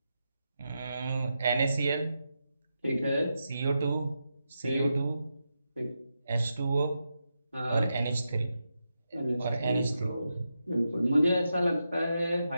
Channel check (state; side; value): inverted; both; correlation -0.87